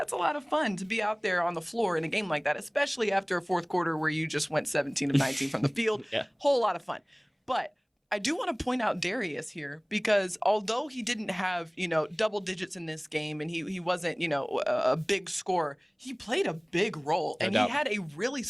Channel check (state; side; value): identical; both; correlation 1.00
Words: a lot of fun to be out there on the floor in a game like that, especially after a fourth quarter where you just went 17 of 19 from the field. Whole lot of fun. But I do want to point out Darius here, because although he didn't have, double digits in this game, and he wasn't, a big scorer, he played a big role, and he had a really